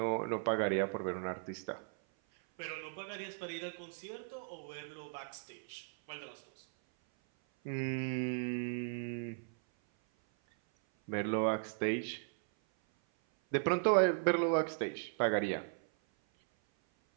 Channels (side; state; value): left; silent; 53 dB below the other